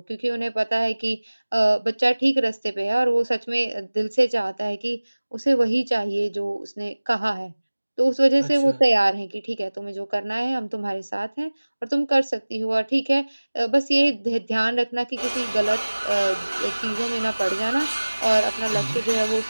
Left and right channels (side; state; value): both; inverted; correlation -1.00